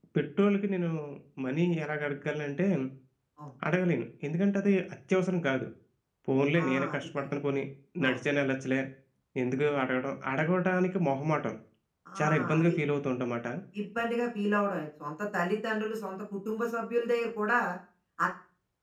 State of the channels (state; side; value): identical; both; correlation 1.00